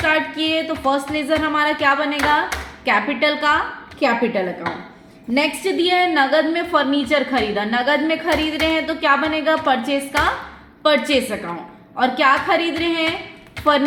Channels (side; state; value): both; identical; correlation 1.00